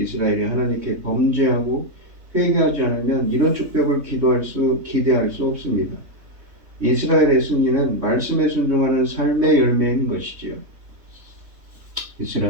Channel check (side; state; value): left; late; 3.6 ms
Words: 하나님께 범죄하고 회개하지 않으면 이런 축복을 기대할 수 없습니다. 이스라엘의 승리는 말씀에 순종하는 삶의 열매인 것이지요.